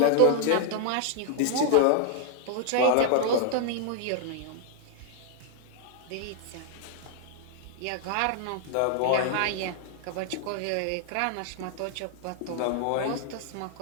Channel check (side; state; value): both; different; correlation 0.00